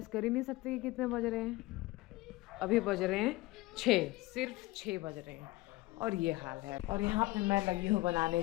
कर ही नहीं सकते कि कितने बज रहे हैं। अभी बज रहे हैं 6, सिर्फ 6 बज रहे हैं और ये हाल है। और यहाँ पे मैं लगी हूँ बनाने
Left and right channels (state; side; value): quieter; right; 19.6 dB